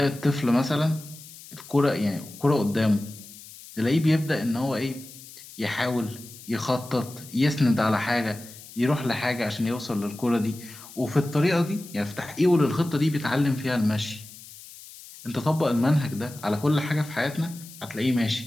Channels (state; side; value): noise; left; hiss, 17 dB below the sound